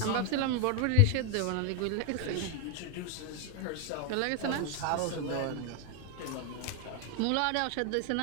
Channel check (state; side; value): different; both; correlation 0.01